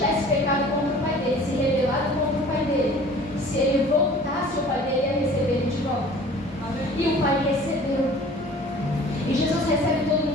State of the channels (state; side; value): normal; both; correlation 0.47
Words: pecado contra o pai dele, se rebelado contra o pai dele, se ele voltasse, o pai dele ia receber ele de volta. E o pai recebeu. E Jesus recebe todo